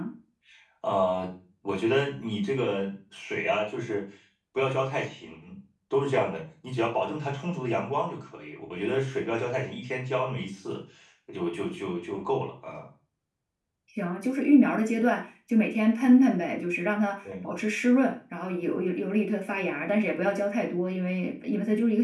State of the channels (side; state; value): both; identical; correlation 1.00